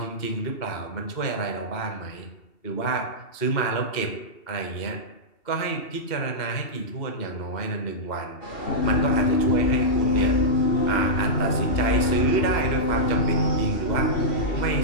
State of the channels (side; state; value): right; late; 2.7 ms